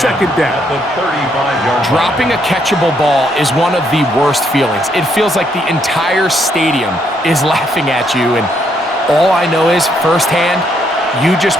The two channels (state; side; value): normal; both; correlation 0.73